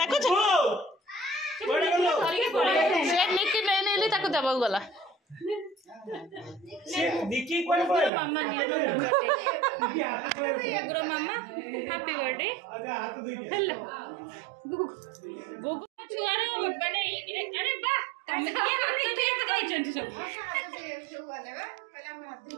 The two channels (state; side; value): drops out; left; at 8.1 s